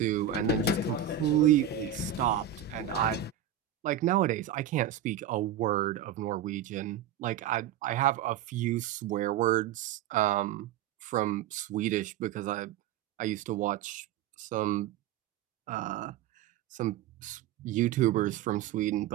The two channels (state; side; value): quieter; left; 9.9 dB